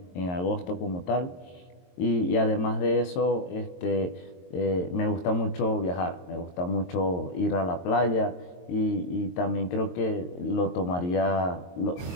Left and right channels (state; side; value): late; right; 22 ms